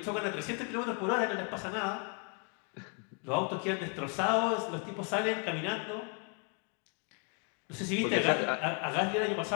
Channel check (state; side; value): quieter; right; 37.7 dB